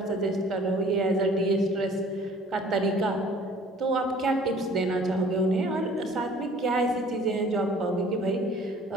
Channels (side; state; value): both; normal; correlation 0.52